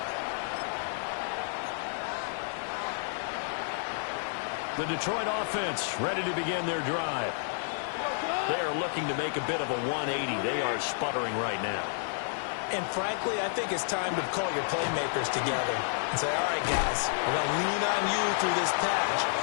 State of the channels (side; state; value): right; silent; digital silence